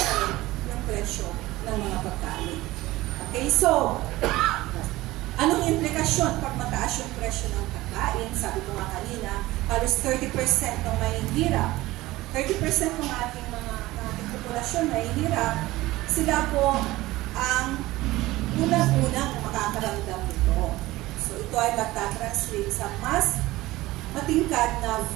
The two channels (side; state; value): left; quieter; 18.2 dB